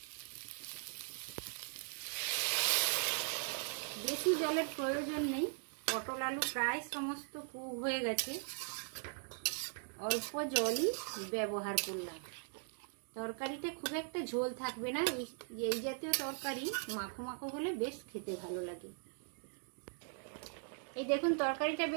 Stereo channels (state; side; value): silent; left; 51 dB below the other